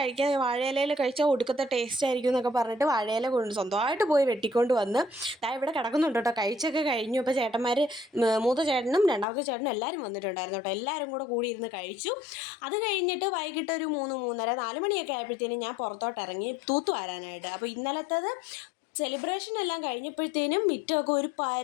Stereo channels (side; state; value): right; drops out; at 9.2 s